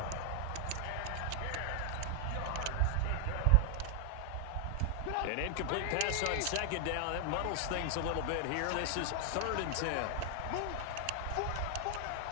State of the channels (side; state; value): both; different; correlation 0.00